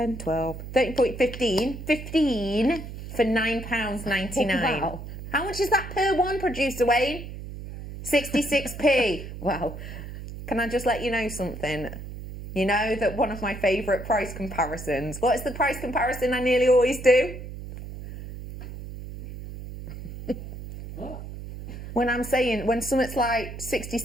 12, 13, 15. 15 for £9.99. Wow. How much is that per one, producer Wayne? 66p. Wow. Can I just let you know something? You know that one of my favourite price comparisons. What is the price comparison I nearly always do? When I'm saying, when something's like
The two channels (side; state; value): right; noise; hum, 10 dB below the sound